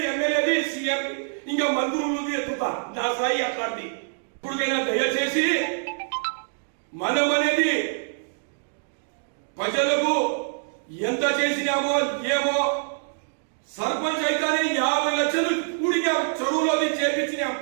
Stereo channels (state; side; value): silent; left; digital silence